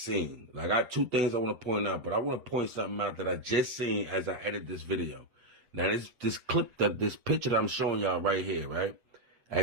seen. Like, I got two things I want to point out, but I want to point something out that I just seen as I edit this video. Now this clip, this picture that I'm showing y'all right here, right?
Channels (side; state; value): left; late; 8.0 ms